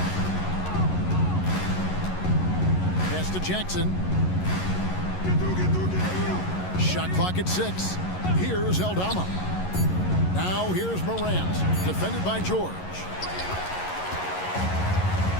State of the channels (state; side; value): late; right; 11 ms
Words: Pass to Jackson. Shot clock at 6. Here's Aldama. Now here's Morant, defended by George.